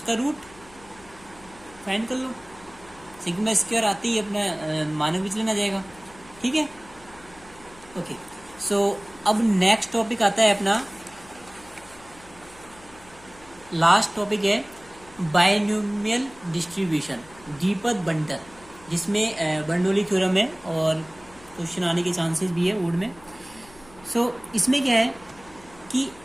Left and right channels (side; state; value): left; noise; hum, 23 dB below the sound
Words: रूट फाइंड कर लो, सिग्मा स्क्वायर आते ही अपना मानक विचलन आ जाएगा, ठीक है, ओके। सो अब नेक्स्ट टॉपिक आता है अपना, लास्ट टॉपिक है बायनोमियल डिस्ट्रीब्यूशन, द्विपद बंटन, जिसमें बर्नौली थ्योरम है और क्वेश्चन आने के चांसेस भी है बोर्ड में। सो इसमें क्या है कि